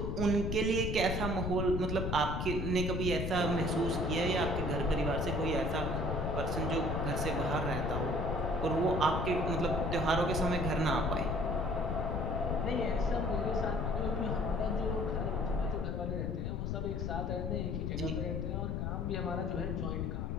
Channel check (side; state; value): left; noise; rumble, 1 dB below the sound